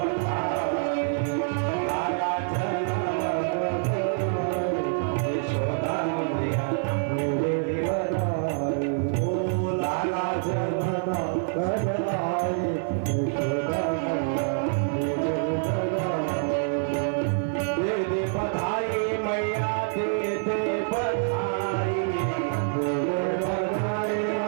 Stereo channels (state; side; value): silent; left; 57 dB below the other